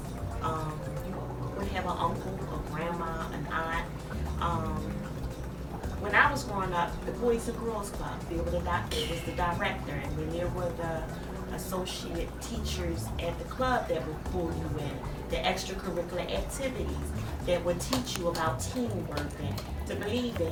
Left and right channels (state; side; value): identical; both; correlation 1.00